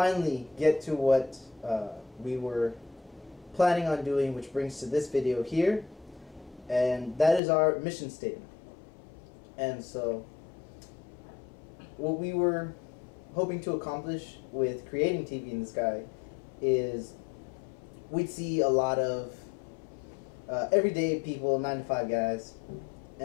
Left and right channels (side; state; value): right; drops out; at 7.4 s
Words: get to what we were planning on doing, which brings to this video here, and that is our mission statement. And so what we were hoping to accomplish with creating TV in the Sky is we'd see a lot of everyday people, 9-to-5 guys,